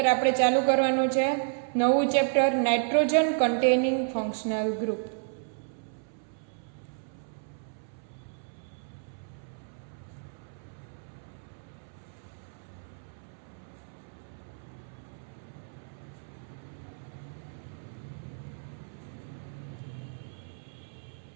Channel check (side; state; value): left; silent; 57 dB below the other